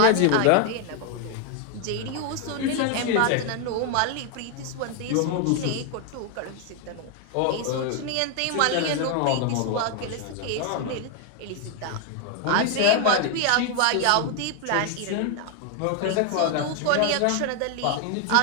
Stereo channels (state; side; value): different; both; correlation 0.00